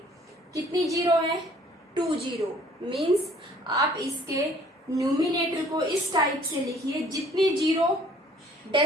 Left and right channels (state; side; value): normal; both; correlation 0.57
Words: कितनी जीरो है, 2 जीरो. मीन्स आप इसके न्यूमिनेटर को इस टाइप से लिखिए, जितनी जीरो